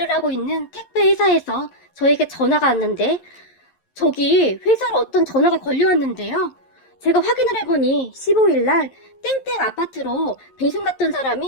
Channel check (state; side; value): late; right; 11 ms